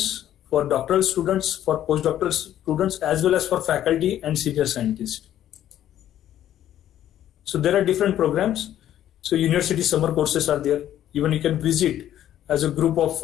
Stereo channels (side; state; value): right; quieter; 11.7 dB